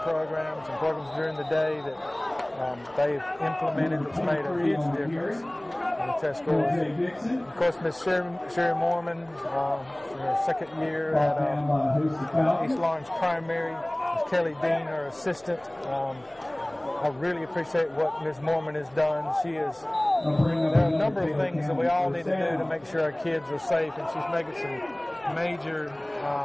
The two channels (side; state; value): left; noise; hum, 29 dB below the sound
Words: and programs during the day that they've implemented that's made a huge difference in the test scores. And of course, Miss Sherry Mormon, in her second year at East Laurens Primary, Miss Kelly Dean, her assistant. I really appreciate what Ms. Mormon has done. There are a number of things that we all need to do to make sure our kids are safe, and she's making some major